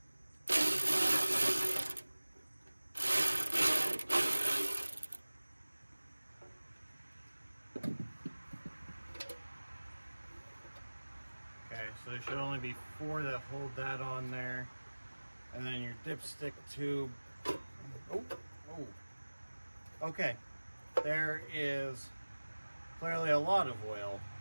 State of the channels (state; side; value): inverted; both; correlation -1.00